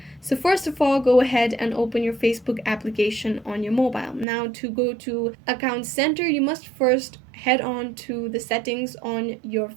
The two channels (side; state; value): left; drops out; at 4.2 s